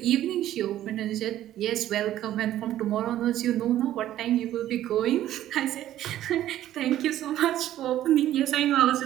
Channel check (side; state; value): left; quieter; 12.9 dB